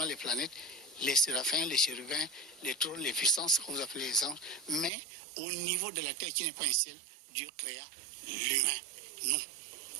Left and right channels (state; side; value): drops out; left; at 4.9 s